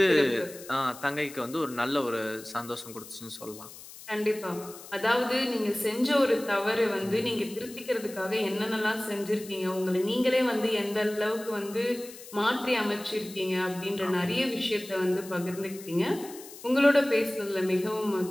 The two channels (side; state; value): left; noise; hiss, 16 dB below the sound